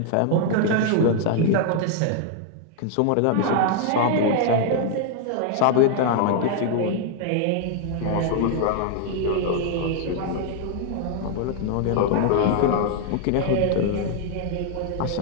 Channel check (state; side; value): different; both; correlation 0.00